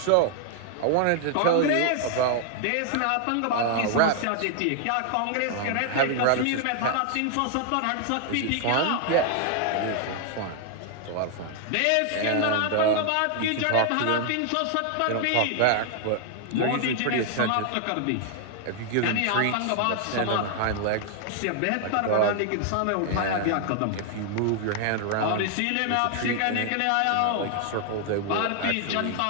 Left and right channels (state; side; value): different; both; correlation 0.00